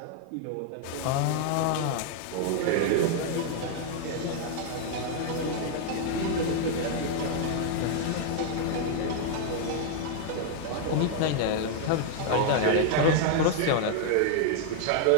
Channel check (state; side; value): different; both; correlation 0.00